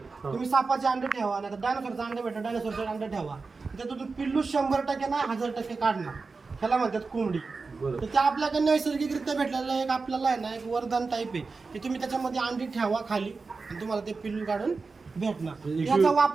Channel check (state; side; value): quieter; left; 4.3 dB